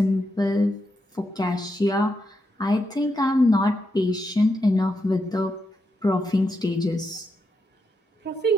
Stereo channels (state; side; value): normal; both; correlation 0.83